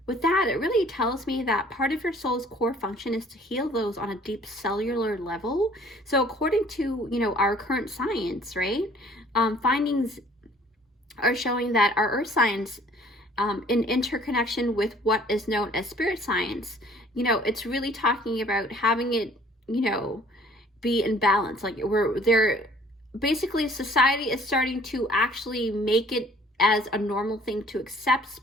that, it really tells me that part of your soul's core function is to heal those on a deep cellular level. So according to, you know, our current science, right, findings are showing that our earth science, in interconnection with what is known as spirit science, you know, it's really talking about having it, you know, be in balance. Like basically society is starting to actually make it as a normal thing to accept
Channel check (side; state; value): both; normal; correlation 0.55